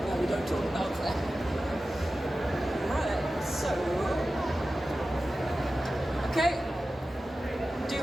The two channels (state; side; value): normal; both; correlation 0.94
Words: No, we don't talk about that. Right, so... Okay. Do